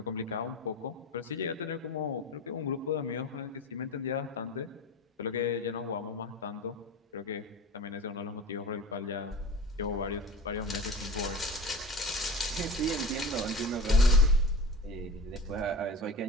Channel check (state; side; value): normal; both; correlation 0.33